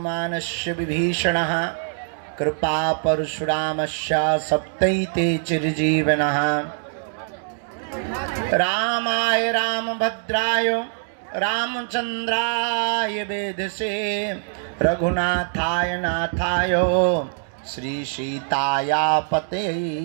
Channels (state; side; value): silent; left; digital silence